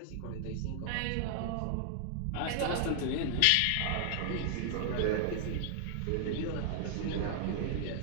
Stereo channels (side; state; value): both; different; correlation 0.00